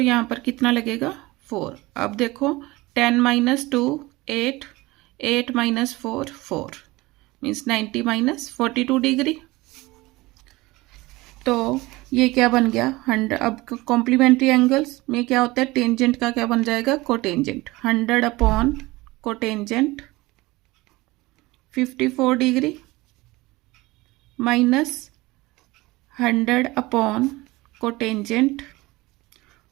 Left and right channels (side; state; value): left; quieter; 20.9 dB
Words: पर कितना लगेगा 4। अब देखो 10 minus 2 8 8 minus 4 4, means 90 minus 42 degree. तो ये क्या बन गया 100। अब कॉम्प्लीमेंट्री एंगल्स में क्या होता है, टेंजेंट का क्या बन जाएगा, cotangent. 100 upon cotangent 54 degree minus 100 upon cotangent